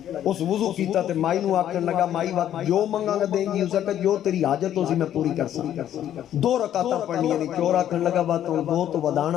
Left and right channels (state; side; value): quieter; right; 11.1 dB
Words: اس وضو کیتا تے مائی نو آکھن لگا مائی وقت جو منگا گا دیں گی اس جگہ جو تیری حاجت ہو سی میں پوری کر سکتا 2 رکعتاں پڑھنی نہیں چور آکھن لگا بات 2 تو